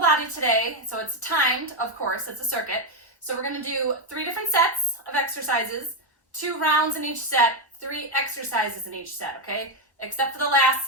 today. So it's timed, of course, it's a circuit. So we're going to do 3 different sets of exercises, 2 rounds in each set, 3 exercises in each set, okay? Except for the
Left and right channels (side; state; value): both; normal; correlation 0.05